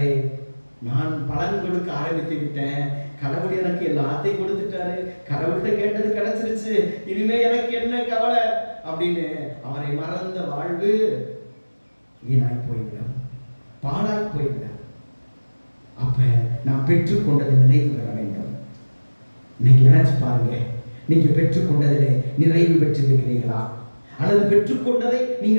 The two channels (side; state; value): both; inverted; correlation -1.00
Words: நான் பலன் கொடுக்க ஆரம்பித்து விட்டேன், கடவுள் எனக்கு எல்லாத்தையும் கொடுத்துட்டாரு, கடவுள்கிட்ட கேட்டது கிடைச்சிருச்சு, இனிமே எனக்கு என்ன கவலை அப்படின்னு அவரை மறந்த வாழ்வு வீணாய் போய்விடும், பாழாய் போய்விடும். அப்ப நாம் பெற்றுக்கொண்டது நிறைவு பெற வேண்டும். இன்னைக்கு நினைச்சு பாருங்க, நீங்க பெற்றுக்கொண்டதிலே நிறைவு பெற்றிருக்கிறீர்களா, அல்லது பெற்றுக்கொண்டதை